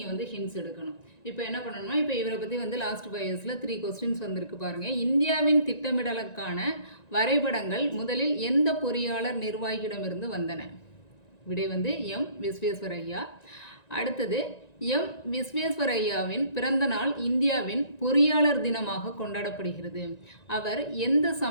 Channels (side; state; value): right; late; 1.9 ms